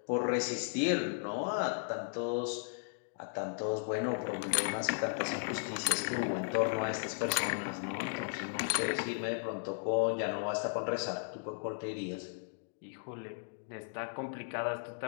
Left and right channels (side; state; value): right; silent; digital silence